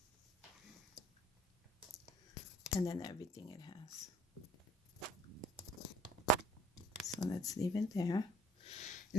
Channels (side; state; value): both; normal; correlation 0.55